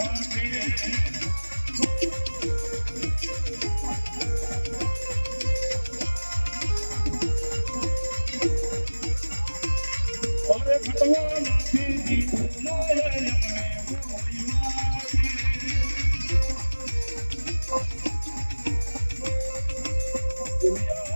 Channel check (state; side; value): inverted; both; correlation -1.00